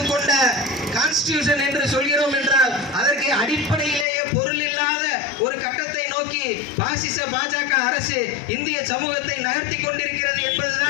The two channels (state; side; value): drops out; right; at 4.0 s